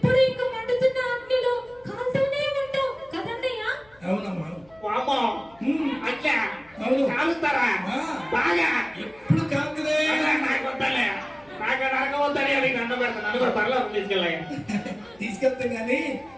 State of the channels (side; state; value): left; noise; hum, 29 dB below the sound